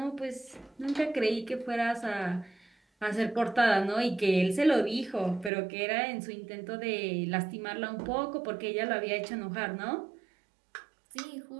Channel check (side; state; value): left; drops out; at 5.5 s